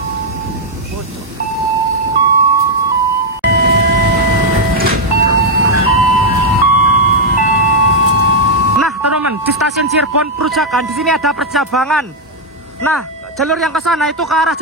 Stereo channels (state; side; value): normal; both; correlation -0.02